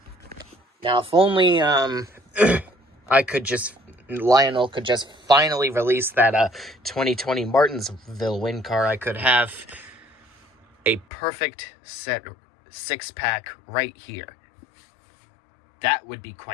Now, if only Lionel could just finally release that 2020 Martinsville win car, I could have a perfect set 6-pack right here. That would be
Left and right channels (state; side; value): drops out; right; at 11.1 s